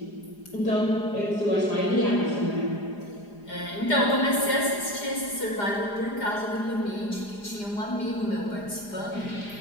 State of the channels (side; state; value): right; late; 4.9 ms